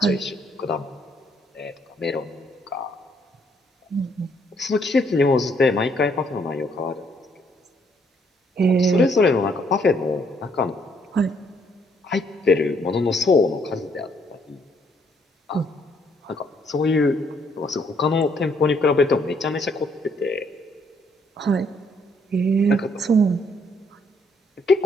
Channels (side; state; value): both; normal; correlation 0.69